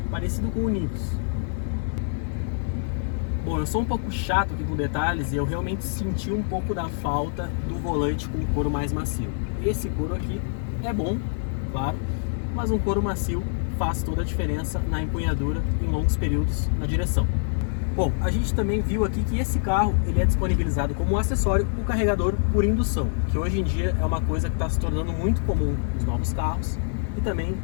parecido com o Nivus. Bom, eu sou um pouco chato aqui com detalhes e eu realmente senti um pouco da falta do volante com couro mais macio. Esse couro aqui é bom, claro, mas um couro macio faz toda a diferença na empunhadura em longos períodos na direção. Bom, a gente também viu aqui que esse carro ele é disponibilizado como acessório o carregador por indução, que hoje em dia é uma coisa que está se tornando muito comum nos novos carros e também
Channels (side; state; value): right; silent; digital silence